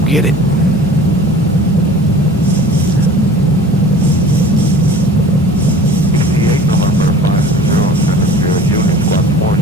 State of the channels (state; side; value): normal; both; correlation 0.44